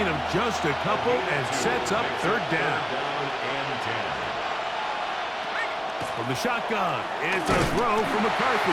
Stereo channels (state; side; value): identical; both; correlation 1.00